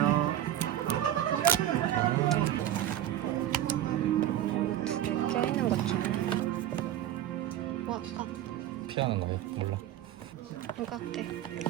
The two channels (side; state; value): left; quieter; 12.1 dB